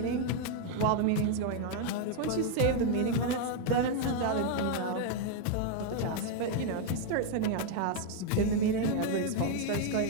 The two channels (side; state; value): both; different; correlation 0.00